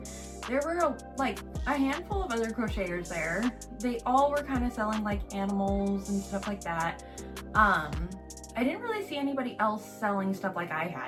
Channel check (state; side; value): identical; both; correlation 1.00